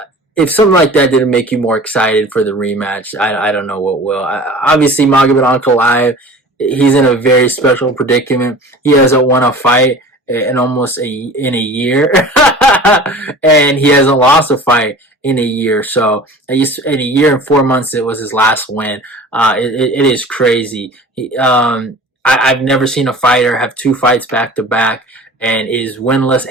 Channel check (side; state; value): both; normal; correlation 0.41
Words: if something like that didn't make you more excited for the rematch, I don't know what will. Obviously, Magomed Ankalaev, he's in a very special predicament. He hasn't won a fight in in a year, and he hasn't lost a fight in a year. So in a year and 4 months, it was his last win. It is crazy. I've never seen a fighter have two fights back to back and is winless